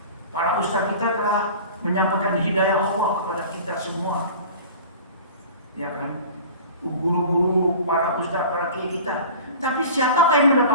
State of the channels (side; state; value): both; inverted; correlation -0.40